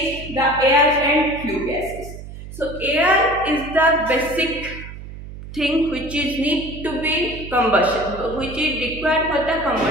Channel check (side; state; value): right; noise; hum, 13 dB below the sound